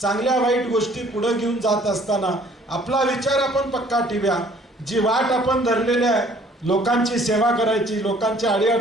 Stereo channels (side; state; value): both; normal; correlation 0.57